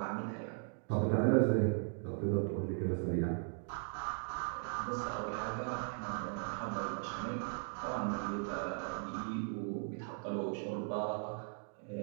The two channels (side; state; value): left; silent; 52 dB below the other